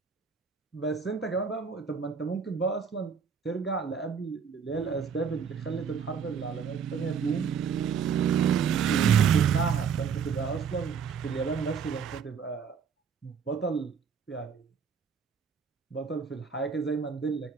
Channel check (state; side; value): quieter; left; 6.6 dB